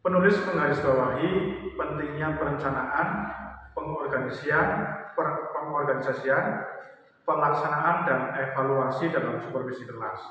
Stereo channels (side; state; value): both; identical; correlation 1.00